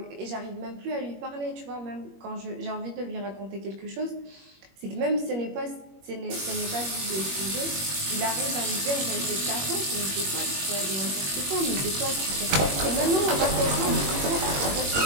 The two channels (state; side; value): late; left; 21 ms